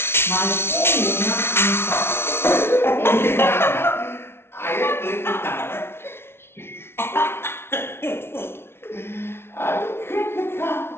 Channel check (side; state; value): right; late; 0.12 ms